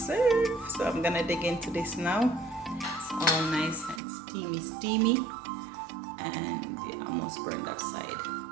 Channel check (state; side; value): drops out; left; at 4.0 s